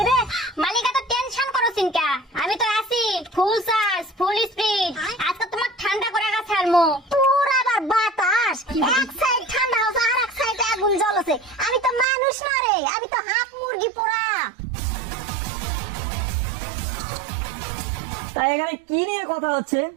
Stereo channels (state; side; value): drops out; left; at 12.1 s